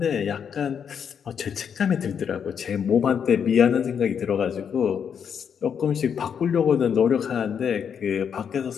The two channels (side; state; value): right; quieter; 7.5 dB